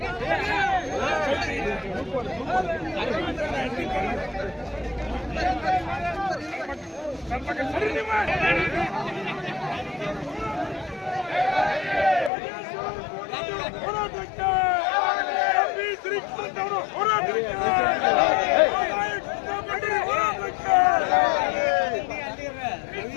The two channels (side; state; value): right; drops out; at 12.3 s